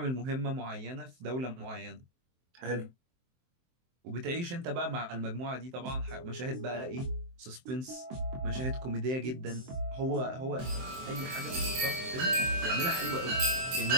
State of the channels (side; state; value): left; late; 23 ms